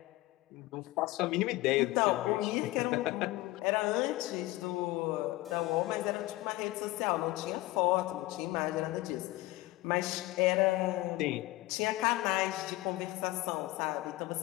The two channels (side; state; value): right; quieter; 18.8 dB